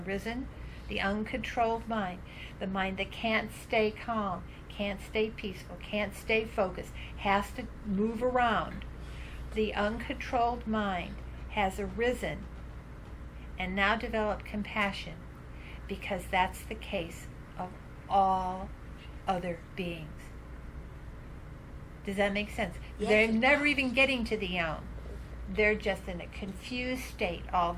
the uncontrolled mind, the mind that can't stay calm, can't stay peaceful, can't stay focused, has to move around. The uncontrolled mind has arisen and now developed compassion, because that's the case of all other beings. Does that make sense? Yes, They're it never does. even getting to the Om. They're just in a confused state all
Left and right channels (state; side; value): identical; both; correlation 1.00